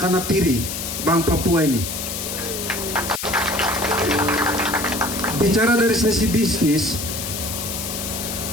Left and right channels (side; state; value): left; noise; hiss, 5 dB below the sound